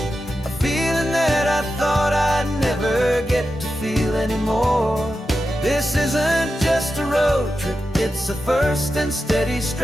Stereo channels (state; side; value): normal; both; correlation 0.90